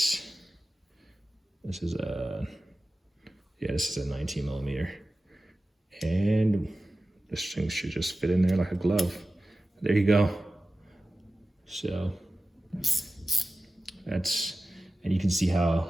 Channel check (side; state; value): both; normal; correlation 0.95